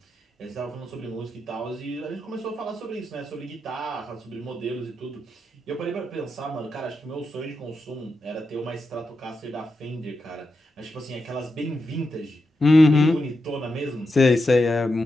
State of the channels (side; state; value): both; normal; correlation 0.87